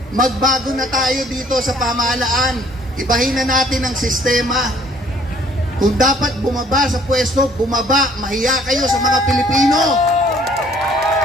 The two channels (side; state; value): both; normal; correlation 0.59